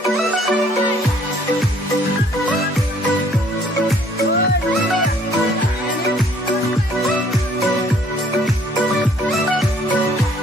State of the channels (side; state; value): both; normal; correlation 0.60